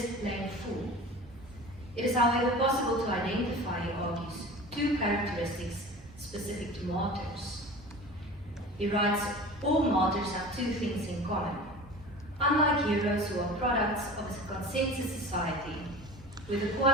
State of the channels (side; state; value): both; normal; correlation 0.37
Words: plain fool. It is, however, possible to identify, he argues, two characteristics specific to martyrs. He writes, all martyrs have two things in common. Unlike heroes who are products of a consensus society, where the